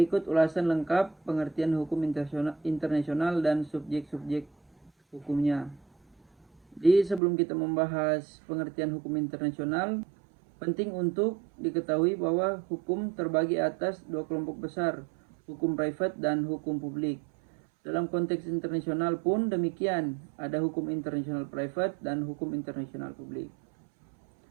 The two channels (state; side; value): drops out; left; at 7.2 s